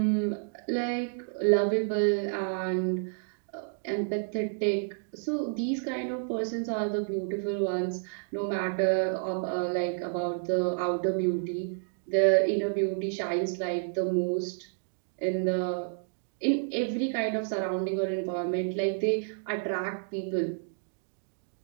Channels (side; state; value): left; silent; digital silence